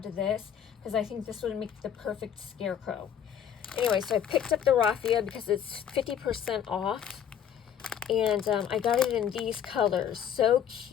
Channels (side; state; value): right; quieter; 8.9 dB